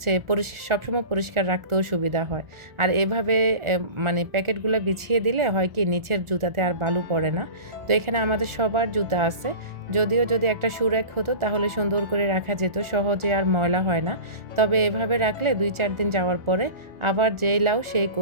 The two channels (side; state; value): left; late; 1.4 ms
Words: সবসময় পরিষ্কার রাখতেও সুবিধা হয়। আর এভাবে মানে প্যাকেটগুলো বিছিয়ে দিলে হয় কি নিচের জুতাতে আর বালু পড়ে না। তো এখানে আমাদের সবার জুতা আছে, যদিও যদি একটা শু র্যাক হতো তাহলে সুন্দর করে রাখা যেত, সহজে আর ময়লা হয় না। তবে এভাবে রাখলে 2-4 দিন যাওয়ার পরে আবার যেই লাউ সেই